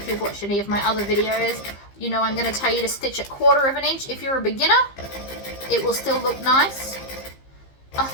you've watched any of my other videos, you know I'm going to tell you to stitch it 1/4 of an inch. If you're a beginner, it will still look nice. Oh,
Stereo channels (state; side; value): late; right; 15 ms